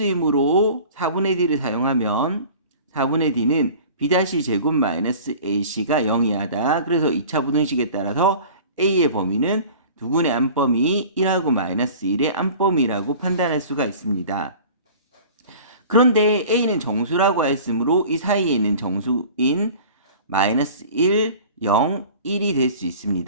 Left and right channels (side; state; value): both; inverted; correlation -0.42